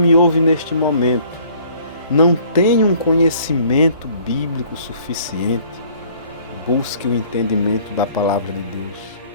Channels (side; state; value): both; inverted; correlation -0.56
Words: ouve neste momento não tem um conhecimento bíblico suficiente, busque o entendimento da palavra de Deus.